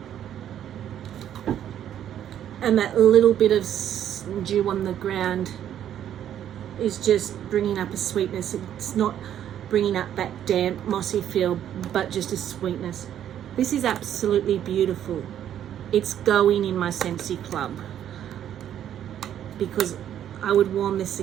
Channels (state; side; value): quieter; left; 10.4 dB